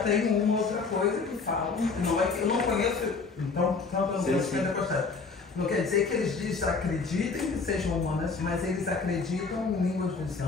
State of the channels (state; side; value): quieter; right; 4.5 dB